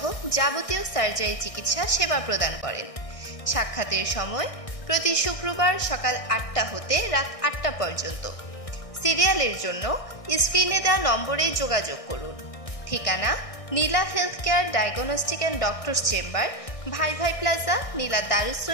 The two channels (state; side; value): late; right; 1.6 ms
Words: যাবতীয় সার্জারি চিকিৎসা সেবা প্রদান করেন। সাক্ষাতের সময় প্রতি শুক্রবার সকাল 8টা হতে রাত 8টা পর্যন্ত। সিরিয়ালের জন্য স্ক্রিনে দেওয়া নম্বরে যোগাযোগ করুন। ঠিকানা Neela health care diagnostic and doctors chamber, Bhai Bhai plaza, নীলা দারুস